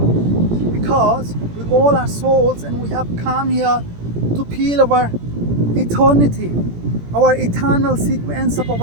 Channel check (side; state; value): left; late; 17 ms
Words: because we all are souls and we have come here to feel our eternity, our eternal sequence of